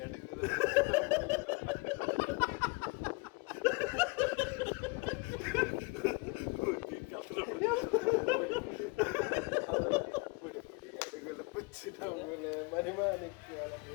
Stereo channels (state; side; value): quieter; right; 29.0 dB